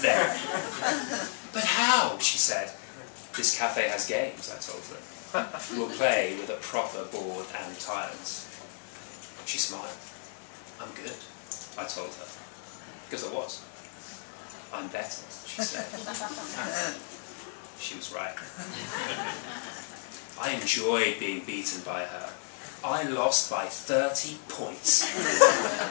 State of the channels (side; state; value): right; silent; digital silence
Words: But how? She said. This cafe has games, I told her. will play with a proper board and tiles. She smiled. I'm good, I told her. Because I was. I'm better, she said. She was right. I enjoyed being beaten by her. I lost by 30 points